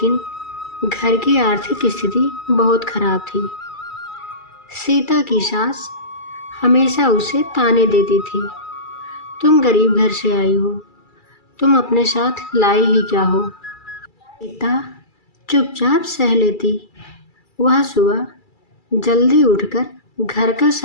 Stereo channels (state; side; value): late; right; 2.3 ms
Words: घर की आर्थिक स्थिति बहुत खराब थी। सीता की सास हमेशा उसे ताने देती थी, तुम गरीब घर से आई हो, तुम अपने साथ लाई ही क्या हो। सीता चुपचाप सह लेती। वह सुबह जल्दी उठकर घर का